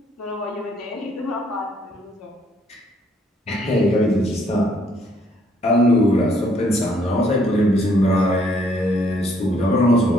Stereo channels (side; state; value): both; normal; correlation 0.66